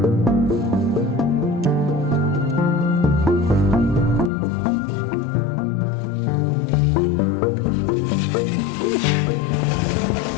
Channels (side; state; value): right; drops out; at 4.3 s